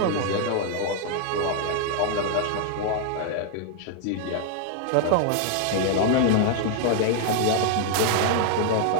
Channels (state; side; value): different; both; correlation 0.00